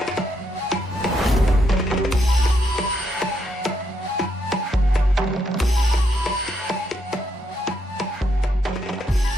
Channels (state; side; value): normal; both; correlation 0.77